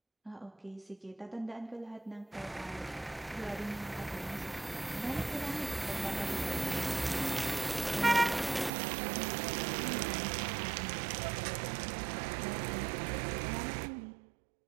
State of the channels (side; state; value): left; drops out; at 8.7 s